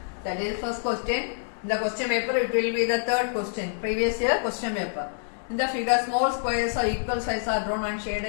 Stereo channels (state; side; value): silent; right; digital silence